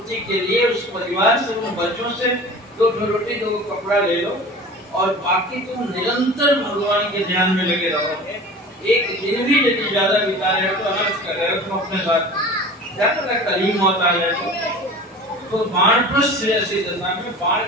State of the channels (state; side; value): normal; both; correlation 0.38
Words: के लिए उस परिवार से, उन बच्चों से 2 रोटी 2 कपड़ा ले लो और बाकी तुम निरंतर भगवान के ध्यान में लगे रहो। एक दिन भी यदि ज्यादा बिता रहे हो तो अनर्थ कर रहे हो तुम अपने साथ। क्या पता कल ही मौत आ जाए। तो वानप्रस्थ जैसी दशा में, बाण